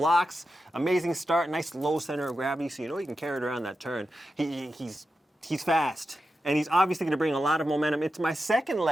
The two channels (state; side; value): normal; both; correlation 0.90